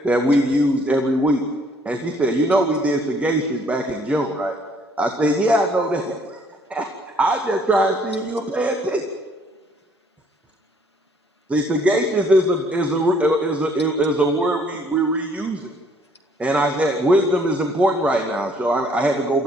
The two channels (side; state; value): both; normal; correlation 0.62